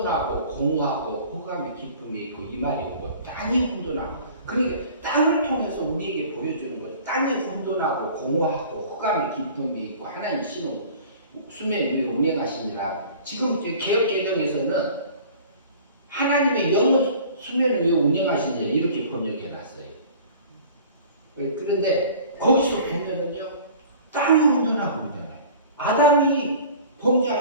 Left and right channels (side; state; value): both; inverted; correlation -0.45